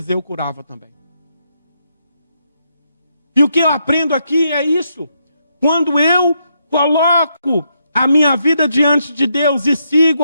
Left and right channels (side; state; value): both; inverted; correlation -0.79